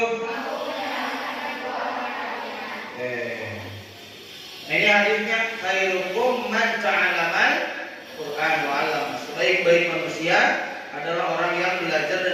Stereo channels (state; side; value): identical; both; correlation 1.00